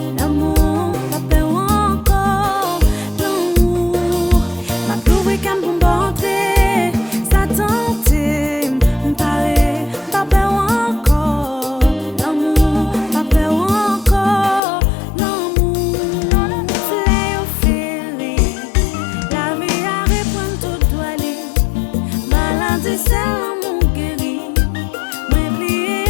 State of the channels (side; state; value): right; drops out; at 14.6 s